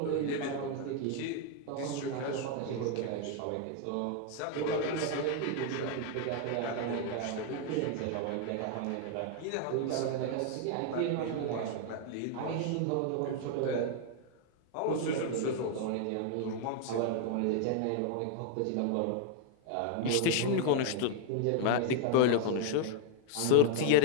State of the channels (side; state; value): both; different; correlation 0.00